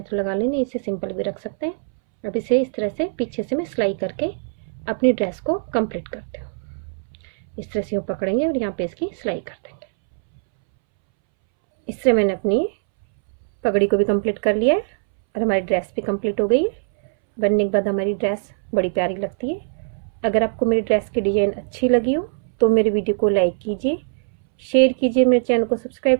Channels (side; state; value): left; silent; 65 dB below the other